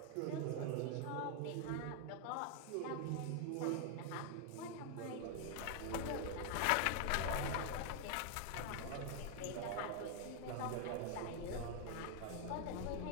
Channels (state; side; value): different; both; correlation 0.00